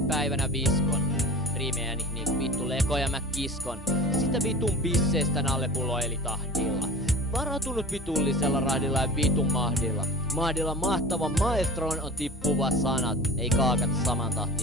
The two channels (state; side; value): normal; both; correlation 0.37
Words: päivänä viskon. Riimejäni niinku vittu lekoja mä kiskon. Sitä vitun pisseestä nallepullo eli tahdilla. Varautunut vitullisella rahdilla ja vitun mahdilla. Mahdilla mahtavan maestroon on tippuva sanat. Ei kaakata saman